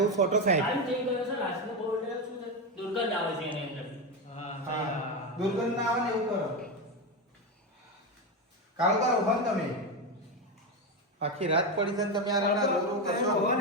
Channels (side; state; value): both; normal; correlation 0.13